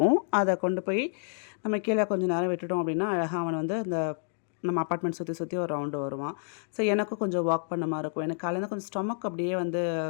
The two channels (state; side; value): silent; right; digital silence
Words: அதை கொண்டு போய் நம்ம கீழே கொஞ்சம் நேரம் விட்டுட்டோம் அப்படின்னா அழகாக அவன் வந்து அந்த நம்ம அப்பார்ட்மெண்ட் சுற்றி ஒரு ரவுண்டு வருவான். ஸோ எனக்கும் கொஞ்சம் வாக் பண்ண மாதிரி இருக்கும். எனக்கு காலையில் கொஞ்சம் ஸ்டொமக் அப்படியே வந்து